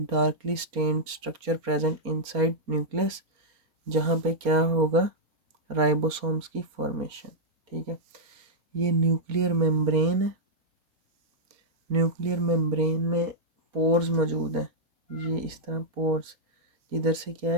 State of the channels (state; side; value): late; left; 4.3 ms